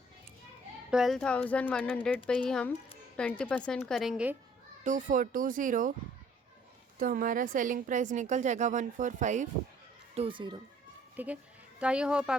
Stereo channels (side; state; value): both; normal; correlation 0.58